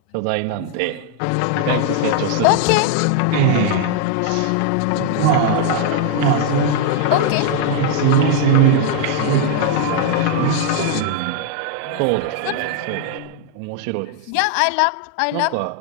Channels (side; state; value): both; different; correlation 0.00